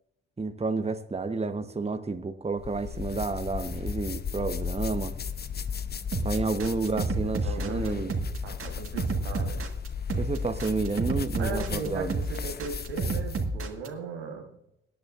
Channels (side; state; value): both; normal; correlation 0.64